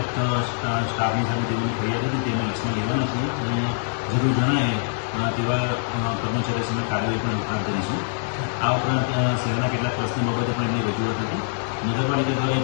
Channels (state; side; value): silent; right; digital silence